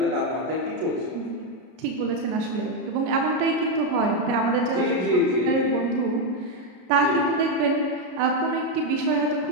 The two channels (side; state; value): left; late; 33 ms